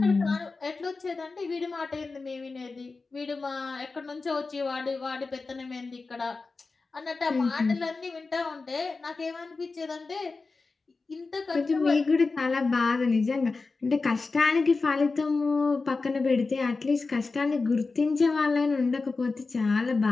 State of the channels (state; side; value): quieter; right; 4.0 dB